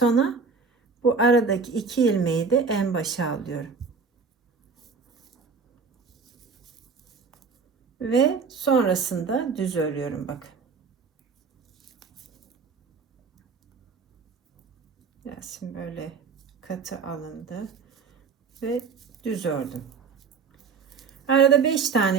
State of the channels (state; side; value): quieter; left; 5.2 dB